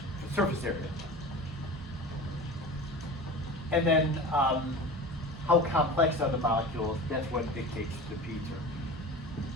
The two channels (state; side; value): normal; both; correlation 0.35